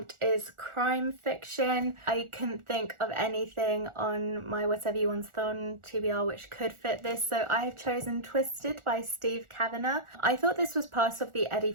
is crime fiction. I couldn't think of anything on my whatever you want on TBR which could fit this, so I have chosen Twisted by Steve Kavanagh. I thought this was part of the Eddie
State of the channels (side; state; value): left; late; 1.4 ms